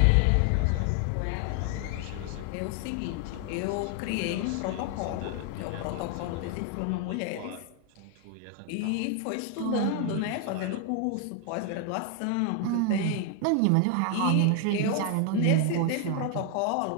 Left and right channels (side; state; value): both; different; correlation 0.00